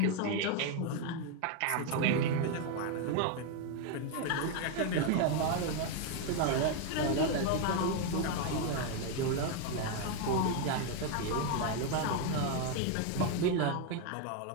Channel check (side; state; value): both; different; correlation 0.01